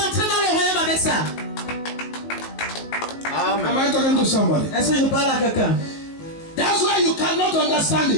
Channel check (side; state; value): right; late; 19 ms